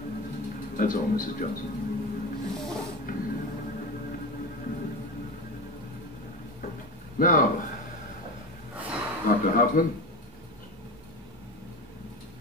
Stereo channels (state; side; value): normal; both; correlation 0.24